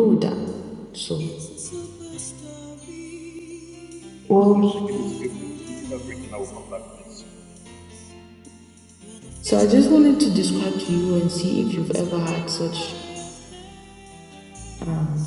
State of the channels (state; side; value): identical; both; correlation 1.00